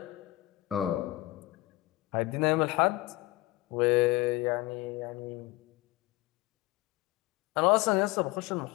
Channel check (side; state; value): right; quieter; 19.0 dB